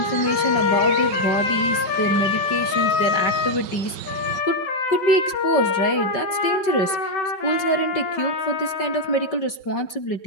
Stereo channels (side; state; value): right; late; 5.3 ms